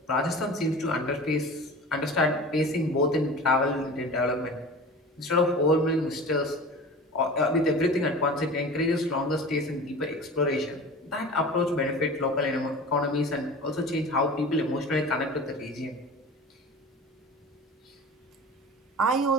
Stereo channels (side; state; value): both; normal; correlation 0.37